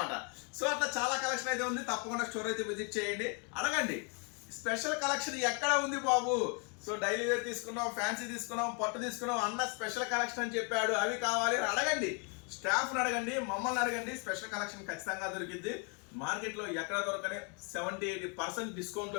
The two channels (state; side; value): quieter; right; 36.6 dB